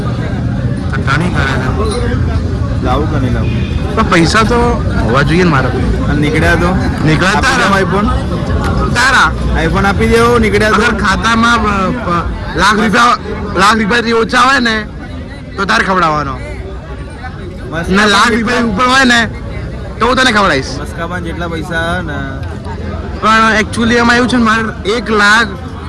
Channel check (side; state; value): both; identical; correlation 1.00